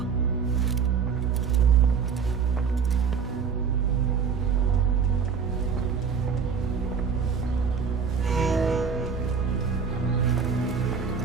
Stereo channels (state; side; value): quieter; left; 6.2 dB